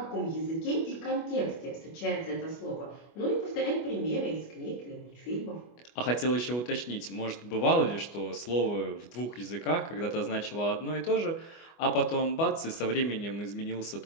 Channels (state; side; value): late; right; 24 ms